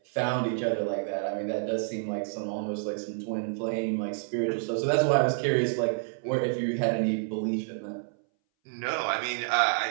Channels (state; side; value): silent; left; 59 dB below the other